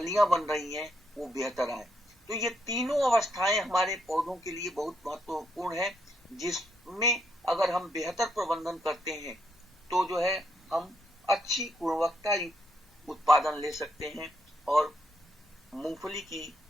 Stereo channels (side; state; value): both; normal; correlation 0.76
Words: बन रही हैं वो बेहतर आए। तो ये तीनों अवस्थाएं हमारे पौधों के लिए बहुत महत्वपूर्ण है, जिसमें अगर हम बेहतर प्रबंधन करते हैं तो जो है हम अच्छी गुणवत्ता युक्त उत्पादन ले सकते हैं और मूंगफली की